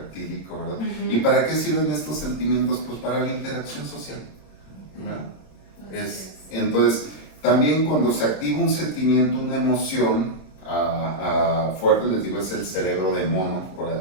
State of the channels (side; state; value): right; late; 27 ms